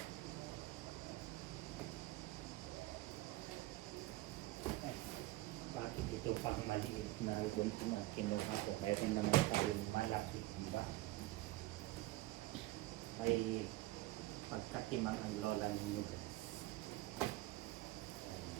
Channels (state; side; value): quieter; left; 17.9 dB